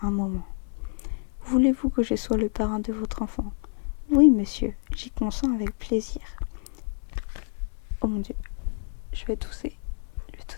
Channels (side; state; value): right; silent; 59 dB below the other